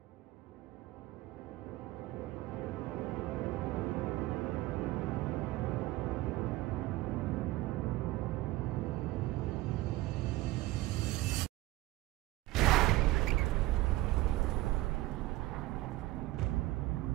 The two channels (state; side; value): quieter; left; 18.0 dB